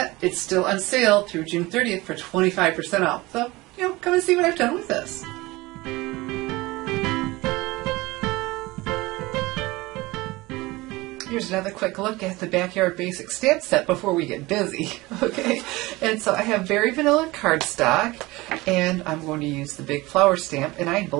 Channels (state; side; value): quieter; left; 21.0 dB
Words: It's still on sale through June 30th for 25% off. So, come and see what I've done with this. Here's another quick look at the Backyard Basic stamp set before we get busy, okay? And so I have very vanilla cardstock, and I'm going to use the big flower stamp, and I